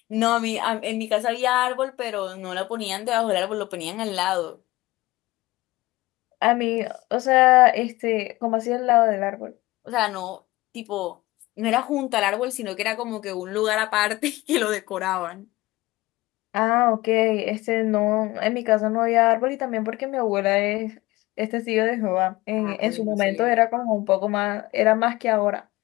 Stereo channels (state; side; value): quieter; right; 19.5 dB